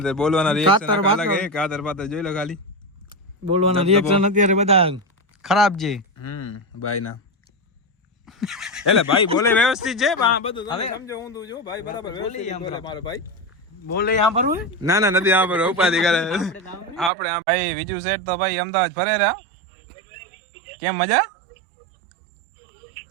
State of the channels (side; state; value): left; drops out; at 17.1 s